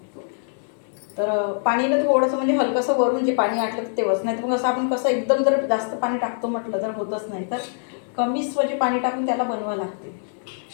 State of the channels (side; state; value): right; silent; digital silence